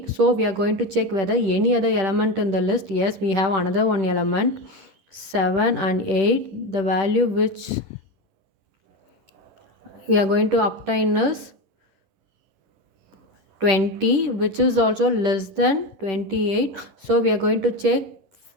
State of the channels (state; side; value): late; left; 10 ms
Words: So we are going to check whether any other element in the list. Yes, we have another one element, 7 and 8. The value which we are going to obtain is 20, which is also less than 28. So we are going to check